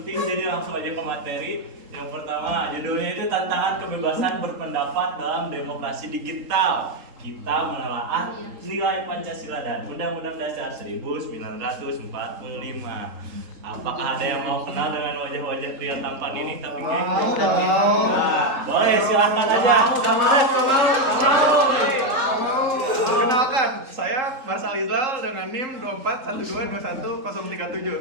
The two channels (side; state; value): left; late; 3.8 ms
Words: jadi langsung aja ke materi. Yang pertama, judulnya itu tantangan kebebasan berpendapat dalam demokrasi digital. Kita menelaah nilai Pancasila dan Undang-Undang Dasar 1945. Apakah ada yang mau kenal dengan wajah-wajah pria tampan ini? Tapi nah, boleh, silahkan aja. Perkenalkan, saya Marsal Izal dengan NIM